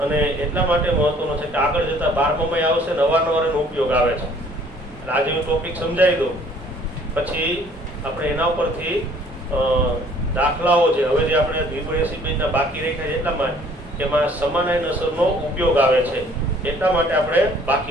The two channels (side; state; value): both; normal; correlation 0.57